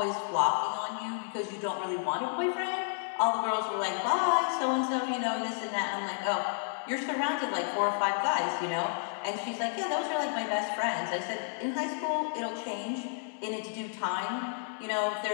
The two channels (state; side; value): silent; right; digital silence